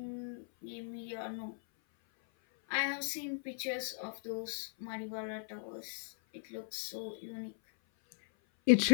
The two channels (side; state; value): right; silent; 52 dB below the other